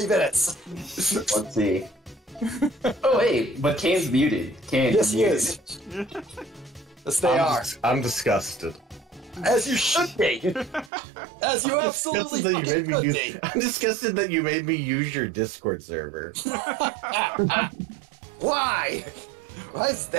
minutes. Let's see. Oh wait, but Kane's muted. Kane, Yes, he muted. is. Yes, they are. I'm disgusted. As you should be. As you absolutely Disgusted that you fucking made me could use, be. I'm disgusted that you made me use your Discord server. Why? Why is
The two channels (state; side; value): drops out; left; at 10.9 s